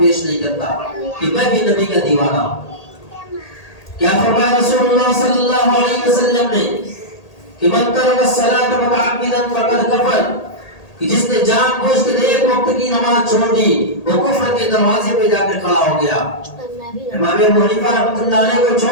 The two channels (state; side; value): late; right; 1.8 ms